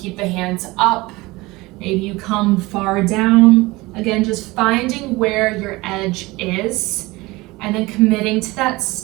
the hands up. Maybe you come far down. Again, just finding where your edge is. And then committing to that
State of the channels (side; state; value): left; quieter; 21.5 dB